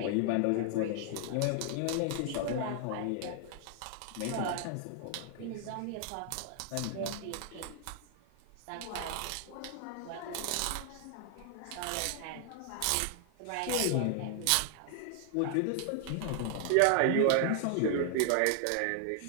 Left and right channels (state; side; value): different; both; correlation 0.00